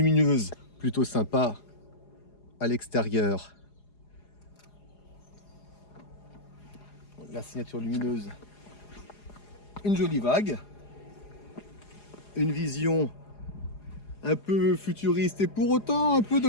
plutôt sympa à l'extérieur. La signature lumineuse, une jolie vague, une vision un peu futuriste et pour autant un peu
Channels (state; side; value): late; right; 4.8 ms